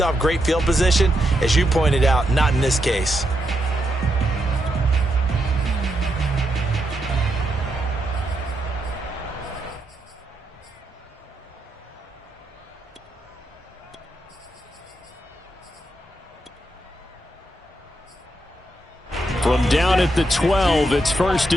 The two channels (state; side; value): normal; both; correlation 0.82